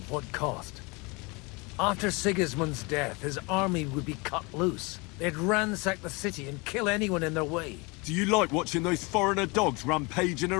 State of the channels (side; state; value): right; quieter; 27.6 dB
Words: what cost? After Sigismund's death, his army would be cut loose. They'd ransack the city and kill anyone in their way. Do you like watching those foreigner dogs rampaging